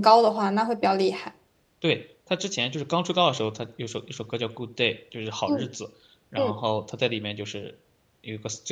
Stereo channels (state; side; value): identical; both; correlation 1.00